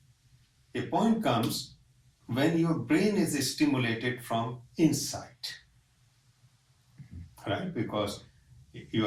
A point comes when your brain is stimulated from inside, right? Because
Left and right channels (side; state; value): both; identical; correlation 1.00